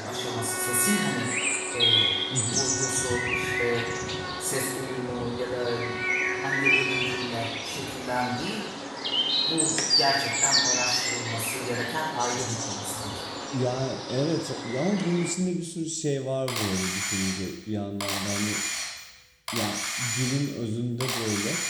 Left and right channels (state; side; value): identical; both; correlation 1.00